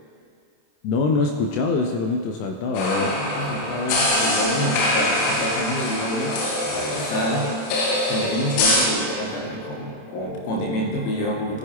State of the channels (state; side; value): late; right; 27 ms